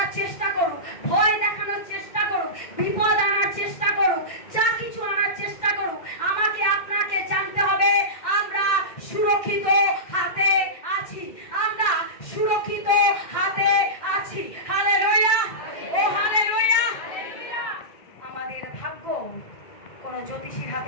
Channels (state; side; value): late; right; 1.6 ms